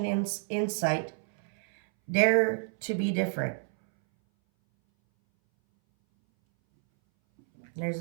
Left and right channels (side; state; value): left; silent; 59 dB below the other